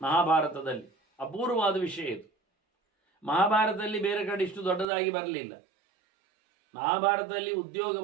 ಮಹಾಭಾರತದಲ್ಲಿ, ಅಪೂರ್ವವಾದ ವಿಷಯ ಇದು. ಮಹಾಭಾರತದಲ್ಲಿ ಬೇರೆ ಕಡೆ ಇಷ್ಟು ದೊಡ್ಡದಾಗಿ ಬರಲಿಲ್ಲ. ಮಹಾಭಾರತದಲ್ಲಿ ಉದ್ಯೋಗ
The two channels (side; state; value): left; drops out; at 4.9 s